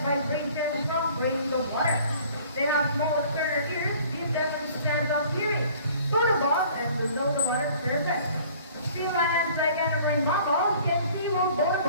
vibrations from grains of water. They have small external ears, give them a sense of hearing, both above and below the water surface. Sea lions, like any marine mammals, can see both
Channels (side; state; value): both; inverted; correlation -0.52